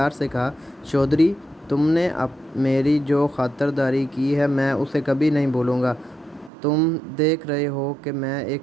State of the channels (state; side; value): drops out; left; at 6.5 s